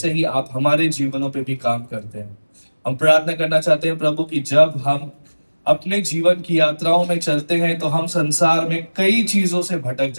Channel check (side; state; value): both; inverted; correlation -1.00